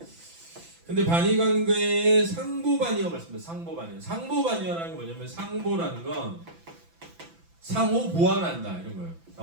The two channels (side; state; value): left; late; 6.0 ms